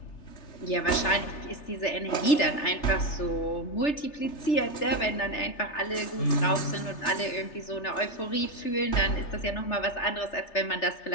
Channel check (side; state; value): right; late; 3.3 ms